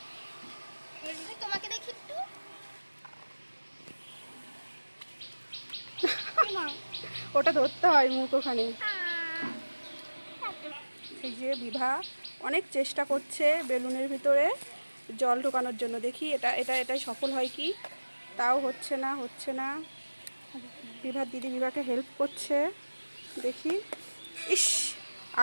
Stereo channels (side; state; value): both; inverted; correlation -1.00